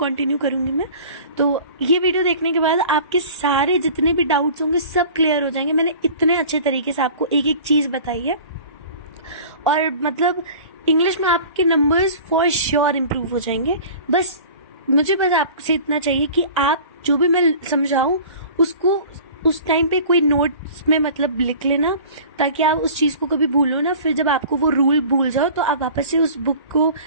करूंगी मैं। तो ये वीडियो देखने के बाद आपके सारे जितने भी डाउट्स होंगे सब क्लियर हो जाएंगे। मैंने इतने अच्छे तरीके से आपको एक एक चीज बताई है और मतलब इंग्लिश में आपके नंबर्स फॉर श्योर इम्प्रूव हो जाएंगे। मुझे आपसे इतना चाहिए कि आप जो भी मैं समझाऊं उसको उस टाइम पे कोई नोट्स में मतलब लिख लेना, ताकि आप उस चीज को कभी भूलो ना। फिर जब आपको वो रूल भूल जाओ तो आप वापस से उस बुक को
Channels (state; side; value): inverted; both; correlation -0.43